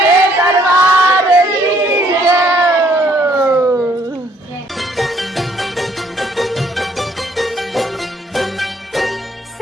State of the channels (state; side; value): normal; both; correlation 0.64